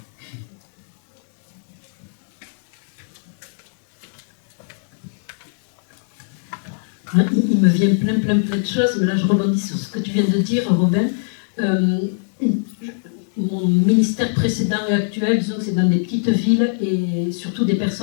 Il me vient plein de choses, mais là je rebondis sur ce que tu viens de dire, Robin. Mon ministère précédent et actuel, disons que c'est dans des petites villes et surtout des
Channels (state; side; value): silent; right; digital silence